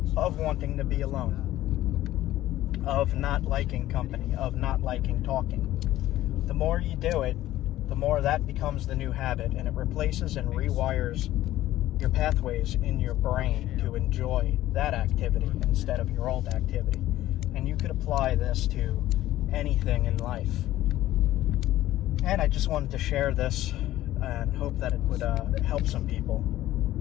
of wanting to be alone, of not liking company, of not liking talking. The more you do it, the more that becomes the new habit, and it replaces and rewires your pathways in your brain to enjoy that activity instead of your old activity. And you could apply this to anything in life. And I just wanted to share this and hope that it would help some people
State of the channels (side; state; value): right; quieter; 14.6 dB